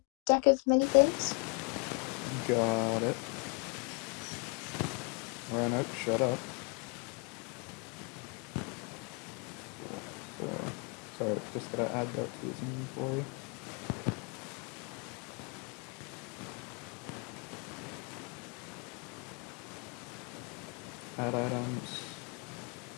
deck of many things. Got it. Rhino, shut up. So, sorry, just gotta add that to his inventory. Add items.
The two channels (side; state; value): right; quieter; 32.8 dB